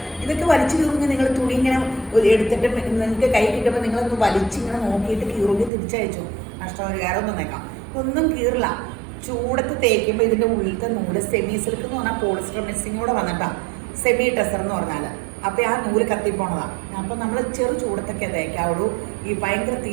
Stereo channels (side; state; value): left; drops out; at 5.7 s